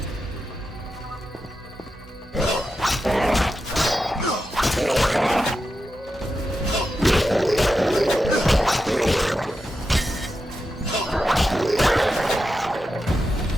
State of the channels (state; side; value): normal; both; correlation 0.89